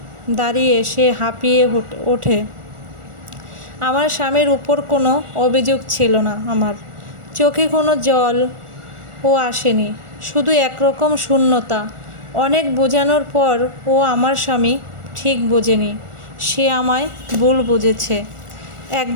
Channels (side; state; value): left; late; 1.4 ms